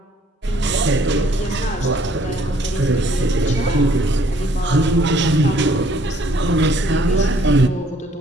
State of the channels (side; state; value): both; normal; correlation 0.62